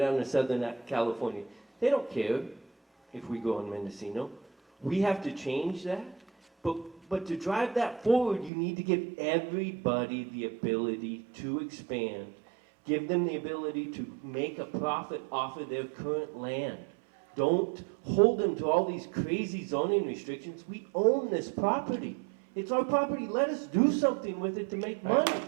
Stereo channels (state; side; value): drops out; left; at 8.5 s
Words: to Southern California, they don't care if we go in Mendocino. We have to change that. But to drive that forward, you need to give everybody the ability to expand. Give them the ability to make a profit off of their current land. Don't hold them to all these crazy zoning restrictions. We own this property. It's our property. Let us do something with it to make money.